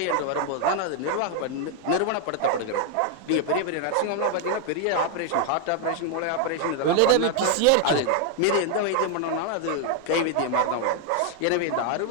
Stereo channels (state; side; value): different; both; correlation 0.00